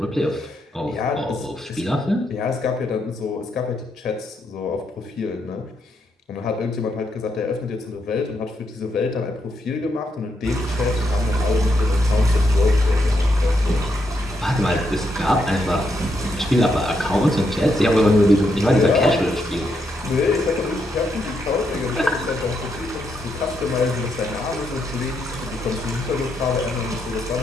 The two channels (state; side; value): normal; both; correlation 0.79